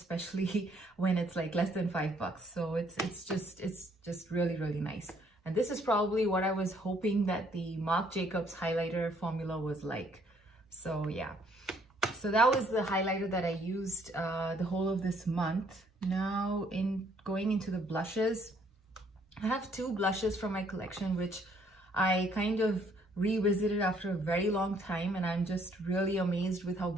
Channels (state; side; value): normal; both; correlation 0.65